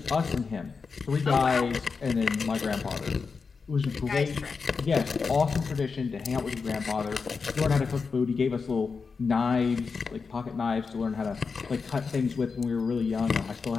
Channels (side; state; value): right; quieter; 5.0 dB